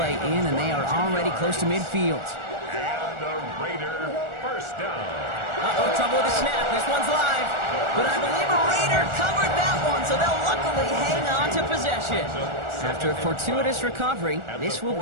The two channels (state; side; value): late; left; 1.4 ms